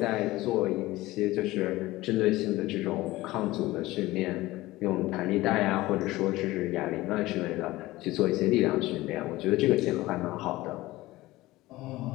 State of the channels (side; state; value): right; quieter; 18.4 dB